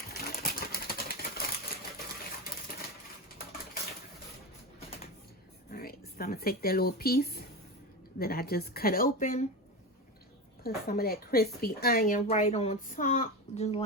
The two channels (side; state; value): both; normal; correlation 0.20